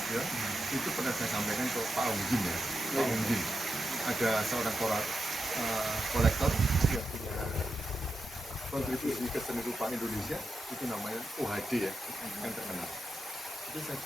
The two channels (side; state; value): both; normal; correlation 0.87